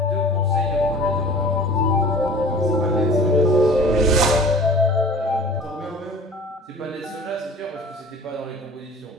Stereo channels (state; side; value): normal; both; correlation 0.44